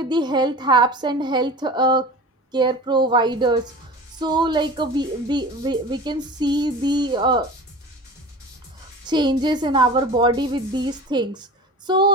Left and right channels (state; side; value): normal; both; correlation 0.36